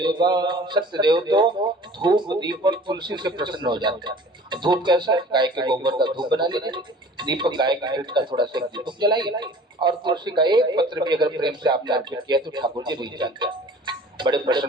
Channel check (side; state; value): both; normal; correlation 0.46